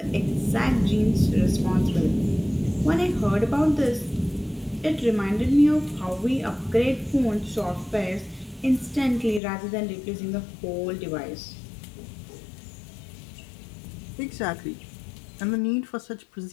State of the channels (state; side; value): drops out; right; at 9.4 s